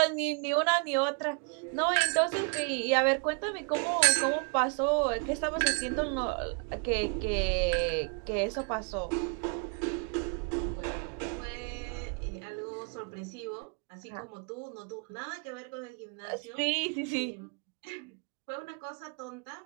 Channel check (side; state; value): left; quieter; 38.6 dB